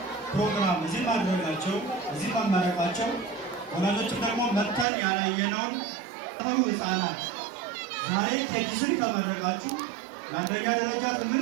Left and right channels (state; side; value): drops out; left; at 4.9 s